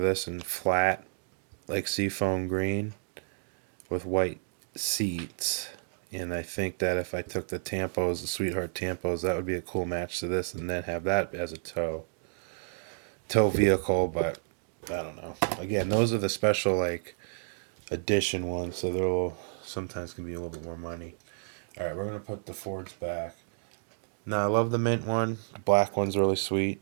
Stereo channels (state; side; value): silent; left; digital silence